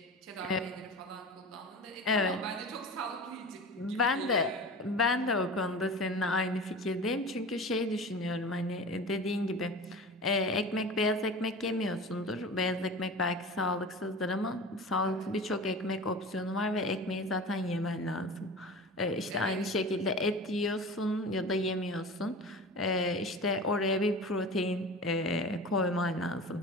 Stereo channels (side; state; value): both; normal; correlation 0.34